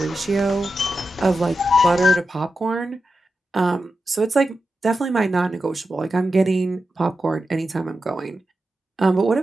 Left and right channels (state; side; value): normal; both; correlation 0.90